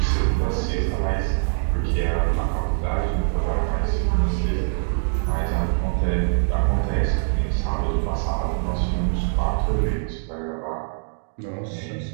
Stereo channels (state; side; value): silent; left; digital silence